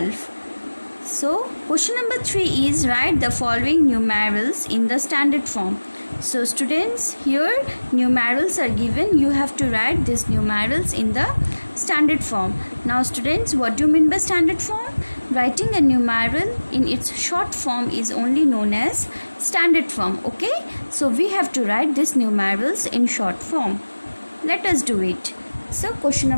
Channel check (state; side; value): inverted; both; correlation -1.00